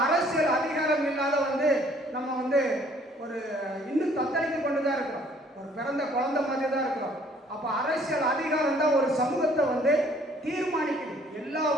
அரசியல் அதிகாரம் இல்லாத வந்து நம்ம வந்து ஒரு இன்னும் தத்தளித்து கொண்டு தான் இருக்கிறோம். ஒரு பிறந்த குழந்தை மாதிரி தான் இருக்கிறோம். அப்போ அரசியல் அதிகாரம் தான் ஒரு சமூகத்தை வந்து தீர்மானிக்குது. எல்லா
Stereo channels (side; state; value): both; normal; correlation 0.59